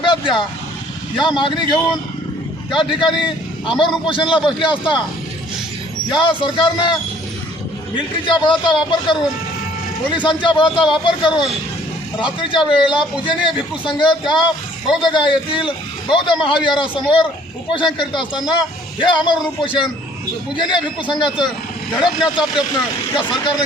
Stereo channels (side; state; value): both; normal; correlation 0.58